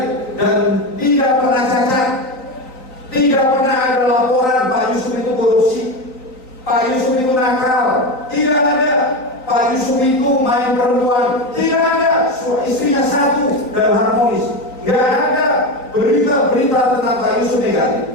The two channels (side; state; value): right; late; 3.9 ms